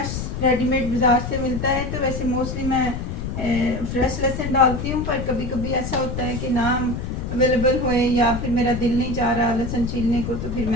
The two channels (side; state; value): left; noise; rumble, 5 dB below the sound